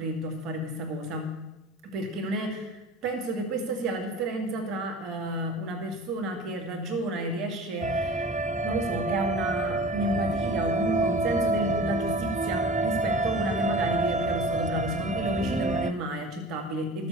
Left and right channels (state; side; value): normal; both; correlation 0.39